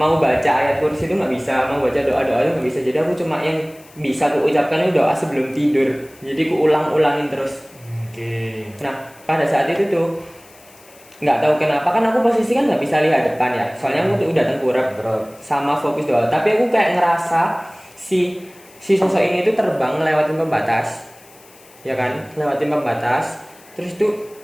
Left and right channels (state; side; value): noise; left; hiss, 25 dB below the sound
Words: baca ayat kursi itu nggak bisa, mau baca doa itu nggak bisa. Jadi aku cuma yang bisa aku ucapkan itu doa sebelum tidur. Jadi aku ulangin terus. Nah pada saat itu tuh nggak tahu kenapa kan aku posisi kan nggak bisa lihat depan ya, soalnya aku tuh udah tengkurap sama fokus doa. Tapi aku kayak ngerasa si sosok ini tuh terbang lewatin pembatas, ya kan, lewatin pembatas. Terus tuh